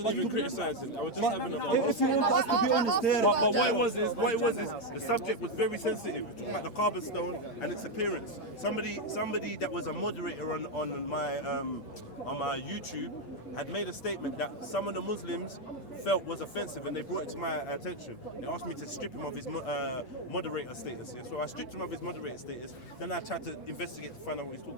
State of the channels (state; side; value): late; right; 8.7 ms